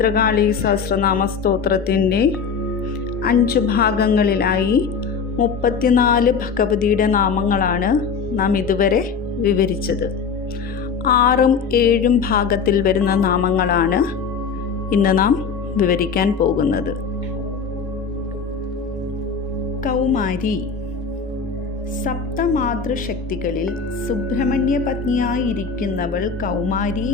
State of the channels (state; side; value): quieter; right; 5.8 dB